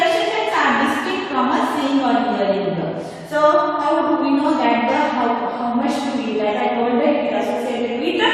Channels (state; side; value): identical; both; correlation 1.00